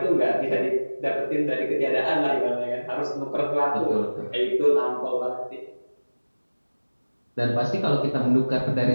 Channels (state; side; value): inverted; both; correlation -1.00